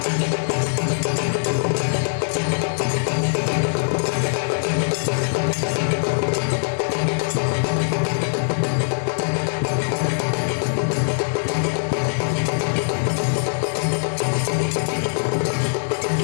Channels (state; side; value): silent; right; 63 dB below the other